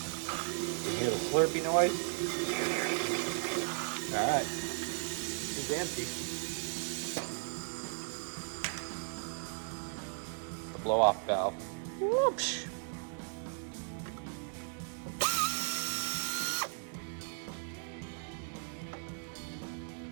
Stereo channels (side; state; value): left; silent; 54 dB below the other